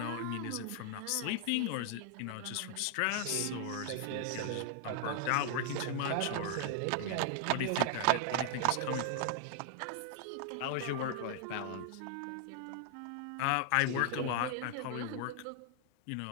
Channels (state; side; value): different; both; correlation 0.00